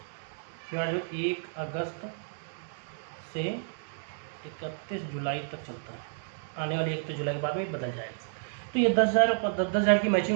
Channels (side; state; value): left; silent; digital silence